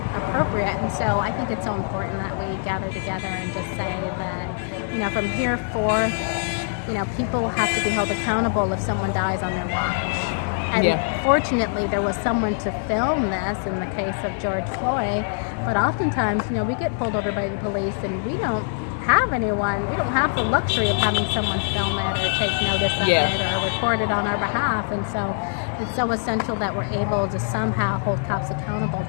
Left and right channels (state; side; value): silent; right; digital silence